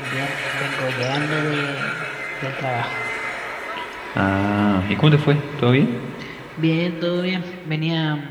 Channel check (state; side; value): identical; both; correlation 1.00